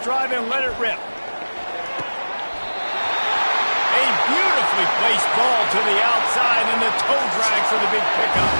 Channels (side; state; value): both; inverted; correlation -1.00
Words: drive and let it rip. A beautifully placed ball to the outside, and the toe drag for the big pickup.